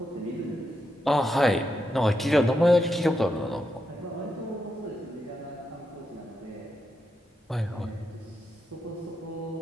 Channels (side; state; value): both; normal; correlation 0.84